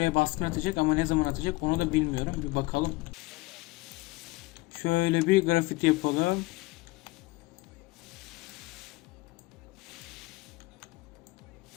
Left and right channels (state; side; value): quieter; right; 21.6 dB